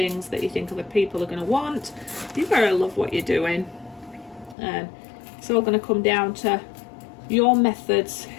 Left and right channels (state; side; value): drops out; right; at 4.5 s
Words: that you think other people are going to want. You've got to love what you're doing. And it's all going to come down to your methods,